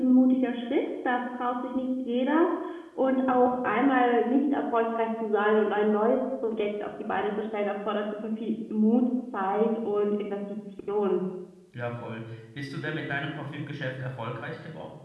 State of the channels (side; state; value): both; identical; correlation 1.00